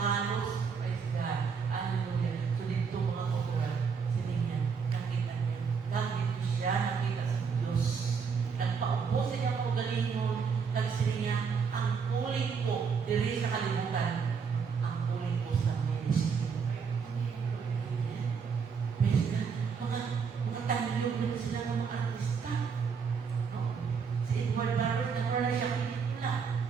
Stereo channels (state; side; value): quieter; left; 5.9 dB